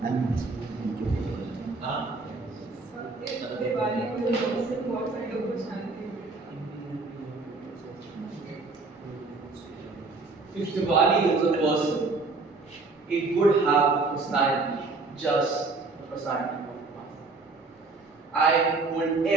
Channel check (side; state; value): left; quieter; 3.8 dB